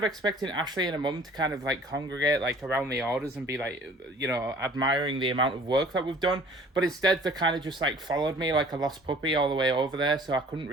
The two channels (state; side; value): normal; both; correlation 0.51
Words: expecting Ashley and her mum to kind of like congregate like around the orders and be like, you know, admiring the amount of work that we've done. But instead they kind of just like followed me like a lost puppy all the way over there. So I couldn't